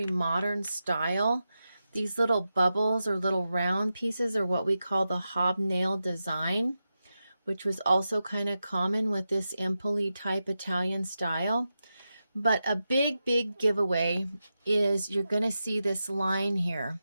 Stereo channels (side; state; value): both; inverted; correlation -0.90